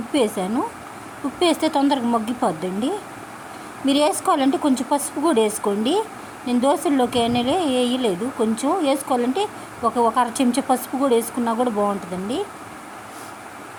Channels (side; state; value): both; identical; correlation 1.00